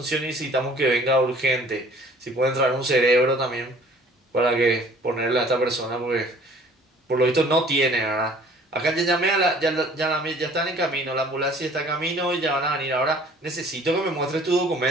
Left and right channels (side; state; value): both; normal; correlation 0.53